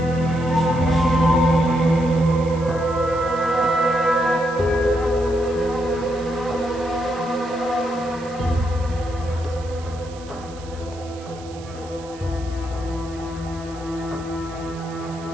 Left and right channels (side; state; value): right; noise; hiss, 21 dB below the sound